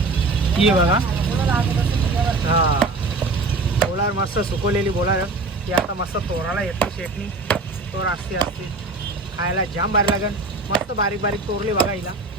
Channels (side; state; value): left; quieter; 3.4 dB